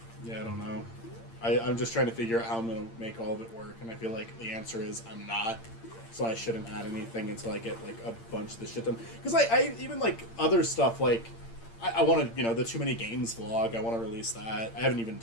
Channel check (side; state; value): right; late; 8.8 ms